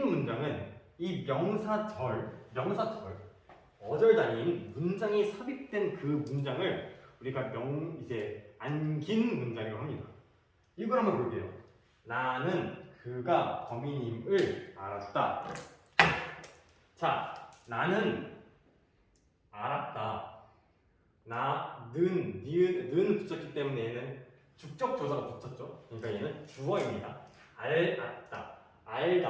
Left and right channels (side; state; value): both; identical; correlation 1.00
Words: 문장은 이 명사절, 어절 단위인 문장이 삽입된 그 문장을 우리가 이제 안긴 문장이라고 합니다. 이걸 한번 볼게요. 나는 그가 범인임을 알았다. 자, 나는 알았다. 는 붙였기 때문에 얘는 죽적 조사가 붙었죠. 그러니까 얘는 주어입니다. 알았다.